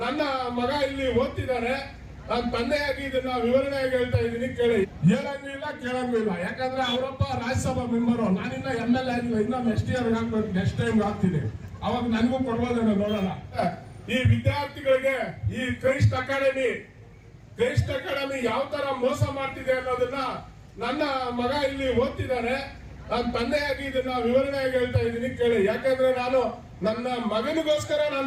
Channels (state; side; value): identical; both; correlation 1.00